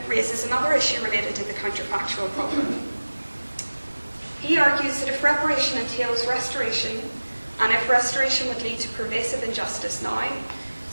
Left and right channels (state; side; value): inverted; both; correlation -1.00